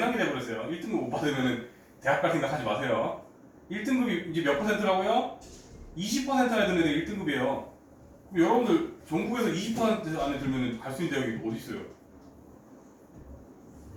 돼버렸어요. 1등급 못 받으면 대학 갈 생각 하지 마세요. 1등급이 이제 몇 %라고요? 20% 안에 드는 애들 1등급이에요. 여러분들 전국에서 20% 안에 들면 갈 수 있는 대학이 어디 있어요?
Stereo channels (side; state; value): both; identical; correlation 1.00